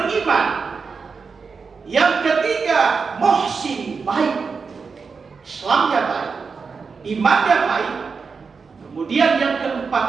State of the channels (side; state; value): left; quieter; 5.1 dB